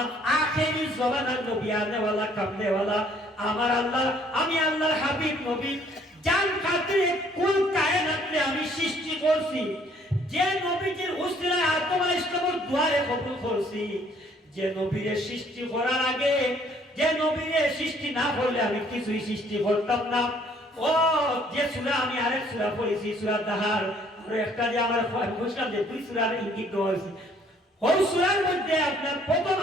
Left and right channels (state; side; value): normal; both; correlation 0.61